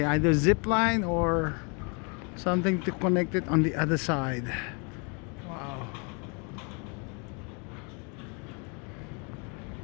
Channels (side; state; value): right; quieter; 34.4 dB